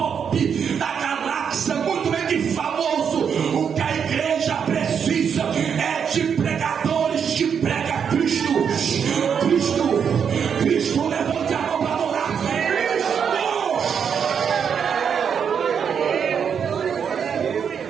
da galáxia, muito bem que famoso. O que a igreja precisa é de pregadores que pregam Cristo. Cristo, Cristo, levante a mão para adorar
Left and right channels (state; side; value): quieter; left; 7.2 dB